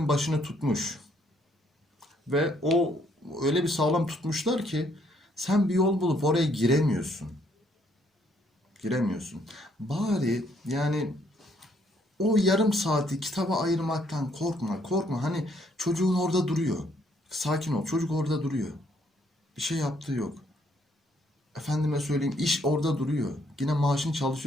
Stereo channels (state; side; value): normal; both; correlation 0.68